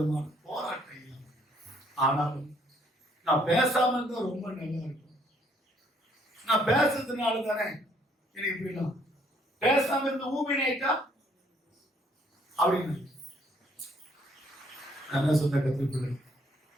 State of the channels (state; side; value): normal; both; correlation 0.65